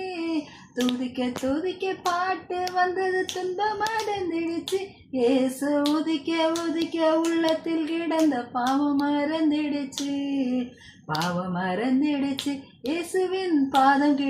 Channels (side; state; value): both; identical; correlation 1.00